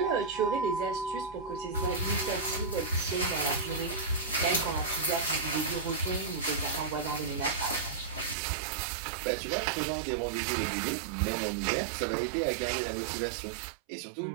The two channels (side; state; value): left; drops out; at 8.3 s